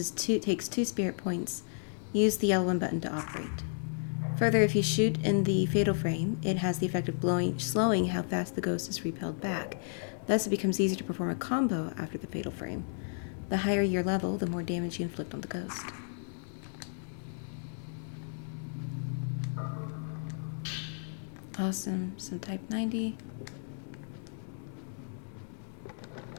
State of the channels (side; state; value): right; silent; digital silence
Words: 2 spirit points. Use the L1 button to operate. Further, if you shoot in the fatal frame, it has the effect of slowing how fast the ghost is repelled back. Thus, it becomes easier to perform a combo after the fatal frame. The higher your level, the more damage you inflict on the ghost. Awesome. Some type 90.